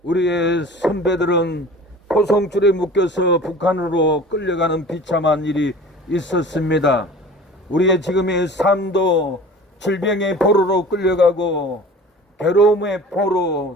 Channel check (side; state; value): both; normal; correlation 0.42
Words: 우리의 선배들은 포송줄에 묶여서 북한으로 끌려가는 비참한 일이 있었습니다. 우리의 지금의 삶도 질병의 포로로 끌려가고 괴로움의